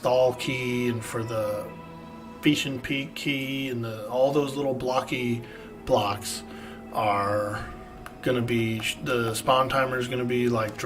key and for the Fission Peak key and all those little blocky blocks are going to be, the spawn timer is going to be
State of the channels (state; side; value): identical; both; correlation 1.00